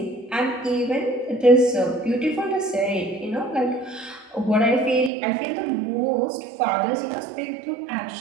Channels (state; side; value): drops out; left; at 5.1 s